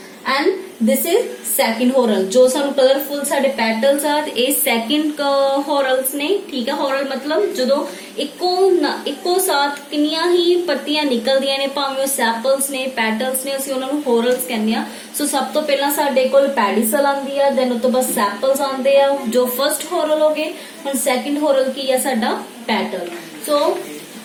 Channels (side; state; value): both; identical; correlation 1.00